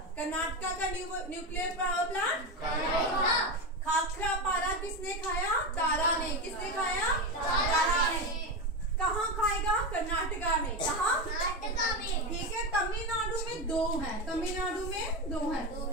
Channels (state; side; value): normal; both; correlation 0.16